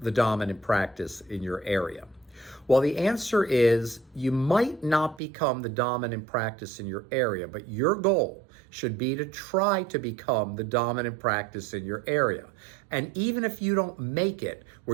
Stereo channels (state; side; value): drops out; left; at 5.2 s